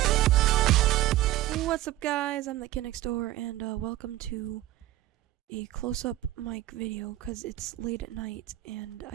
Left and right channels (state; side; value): quieter; left; 15.2 dB